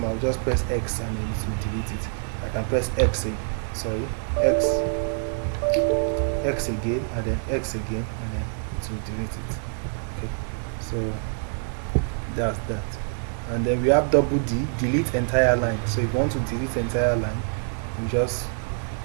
I'll just press X and then it will delete it. I can press X again, and then X again, and then it will delete it. Okay, so that's that. And then we have double D, delete entire line. So if you want to delete entire line, you just,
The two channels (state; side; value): silent; left; 61 dB below the other